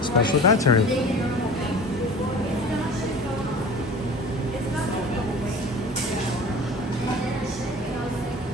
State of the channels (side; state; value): both; normal; correlation 0.40